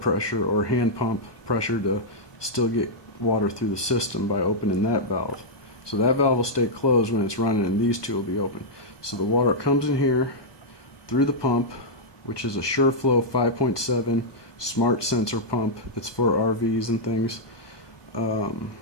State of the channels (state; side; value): late; right; 1.2 ms